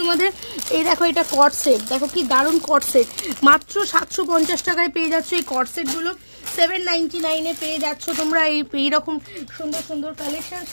তোমাদের। এই দেখো এটা কট সেট, দেখো কি দারুণ কট সেট, মাত্র 750 টাকায় পেয়ে যাচ্ছ এই কট সেটগুলো। 799 পেয়ে যাচ্ছ তোমরা এইরকম সুন্দর সুন্দর কালেকশন।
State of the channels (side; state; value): both; inverted; correlation -1.00